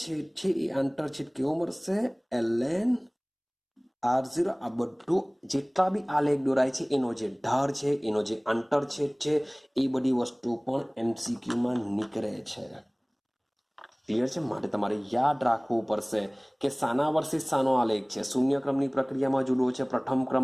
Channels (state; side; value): identical; both; correlation 1.00